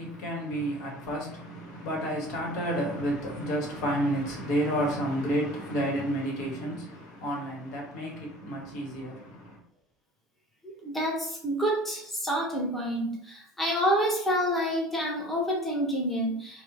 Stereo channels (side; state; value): both; normal; correlation 0.44